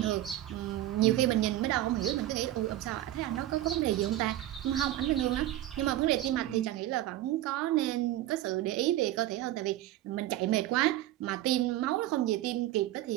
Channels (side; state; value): left; quieter; 14.2 dB